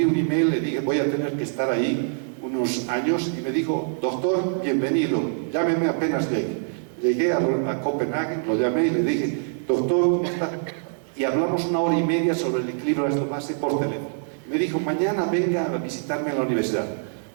un email, le dije, voy a tener que estar ahí unos años, y me dijo, doctor, bienvenido, llámeme apenas llegue. Llegué a Copenhague, lo llamé y le dije, doctor, ¿cómo está? Y hablamos 1 hora y media sobre el equilibrio ácido-base por teléfono. Me dijo, mañana venga a visitarme en la universidad.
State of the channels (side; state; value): left; silent; digital silence